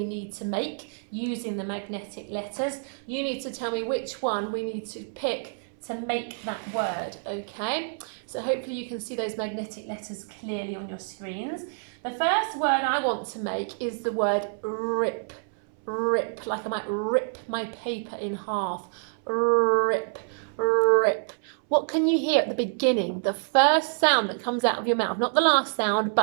need to make using the magnetic letters. You need to tell me which one we need to pick to make that word, okay? So hopefully you can see those magnetic letters clearly on your screens. The first word I want to make is the word rip. Rip, like I might rip my paper in half. Rip, rip. What can you hear at the beginning? The first sound that comes out of your mouth, not the last sound,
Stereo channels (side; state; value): left; silent; 60 dB below the other